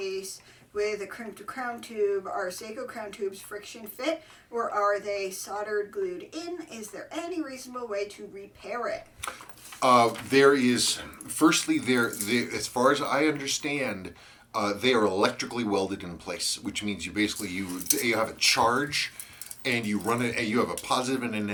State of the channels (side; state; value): both; identical; correlation 1.00